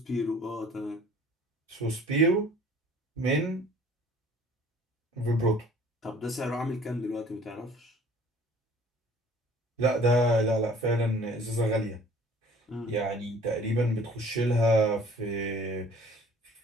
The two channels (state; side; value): normal; both; correlation 0.51